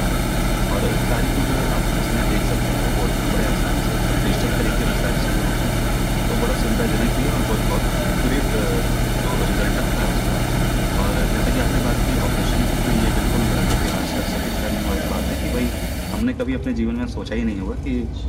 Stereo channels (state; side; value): identical; both; correlation 1.00